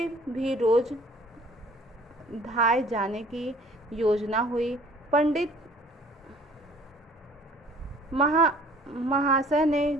भी रोज धाए जाने की योजना हुई। पंडित महाशय ने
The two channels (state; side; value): normal; both; correlation 0.54